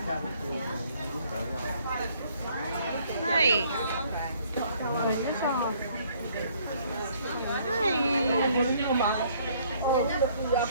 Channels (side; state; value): both; inverted; correlation -0.62